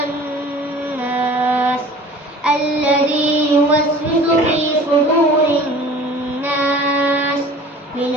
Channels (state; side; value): normal; both; correlation 0.45